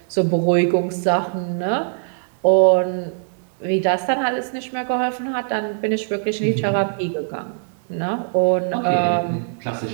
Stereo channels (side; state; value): left; silent; digital silence